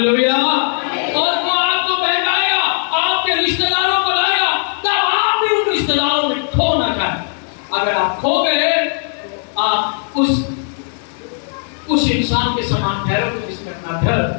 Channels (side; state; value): right; silent; 55 dB below the other